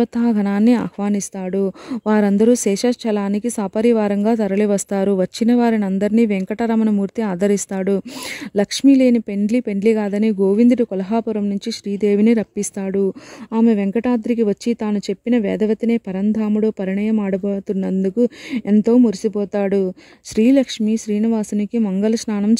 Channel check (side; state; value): both; identical; correlation 1.00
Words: ఆహ్వానిస్తాడు. వారందరూ శేషాచలానికి సపరివారంగా తరలివస్తారు. వచ్చిన వారిని అందరినీ వెంకటరమణమూర్తి ఆదరిస్తాడు. లక్ష్మీ లేని పెండ్లి కాదని గోవిందుడు కొల్హాపురం నుంచి శ్రీదేవిని రప్పిస్తాడు. ఆమె వెంకటాద్రికి వచ్చి తాను చెప్పిన వేదవతినే పరంధాముడు పరిణయం ఆడబోతున్నందుకు ఎంతో మురిసిపోతాడు. శ్రీలక్ష్మి శ్రీనివాసునికి మంగళ స్నానం